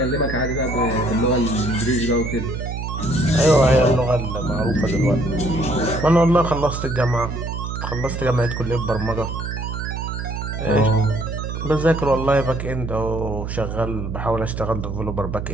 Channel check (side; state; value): right; noise; hum, 5 dB below the sound